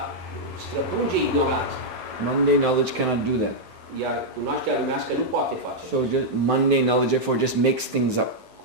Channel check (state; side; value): late; left; 9.4 ms